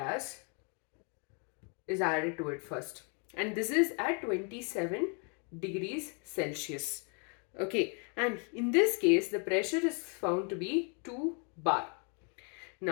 is added to it first, and this is at 27 degrees Celsius. Okay, and in this case the pressure is found to be 2 bar.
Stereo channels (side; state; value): right; quieter; 38.4 dB